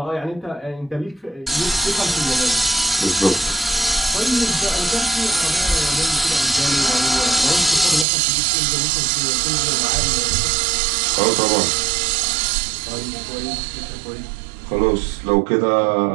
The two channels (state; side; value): drops out; left; at 8.1 s